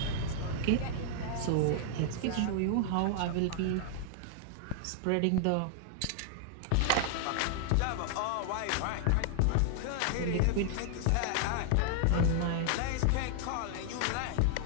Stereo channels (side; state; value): both; different; correlation 0.00